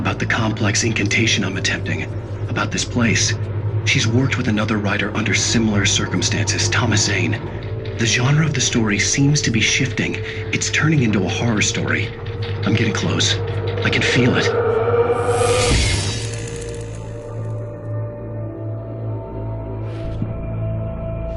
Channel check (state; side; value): identical; both; correlation 1.00